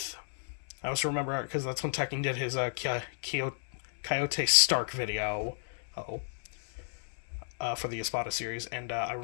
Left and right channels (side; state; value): right; silent; 56 dB below the other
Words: I also remember, because that's when Tekken did his Coyote Stark video for the Espada series, and I